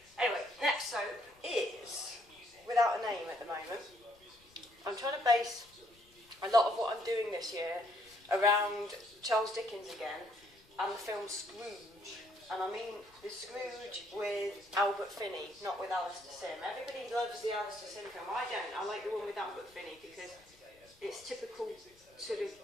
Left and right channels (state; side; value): noise; left; rumble, 29 dB below the sound